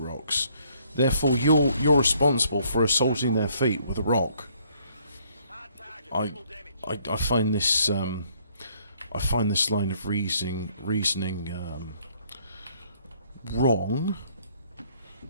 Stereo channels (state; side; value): inverted; both; correlation -0.65